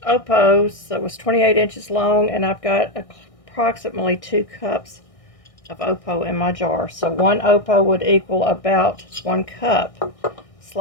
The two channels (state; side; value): late; right; 1.6 ms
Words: Opos that was 28 inches long, and I've got approximately 2 cups of Opo in my jar. So 1 Opo would equal about 1 cup